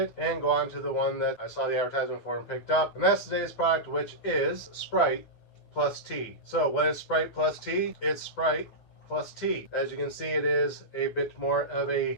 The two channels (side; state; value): right; late; 9.6 ms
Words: and go on to the one that I saw the advertisement for and picked up. And that's today's product, which is Sprite plus tea. So what is Sprite plus tea? It's Sprite plus tea. As you can see, it is a bit more of a